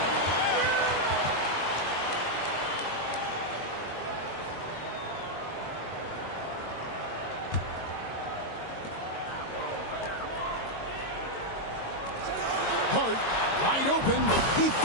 Hart, wide open. He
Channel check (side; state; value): right; late; 22 ms